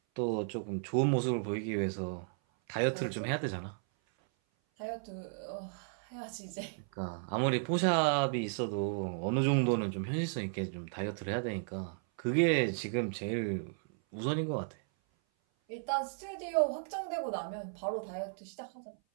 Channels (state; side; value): silent; left; 55 dB below the other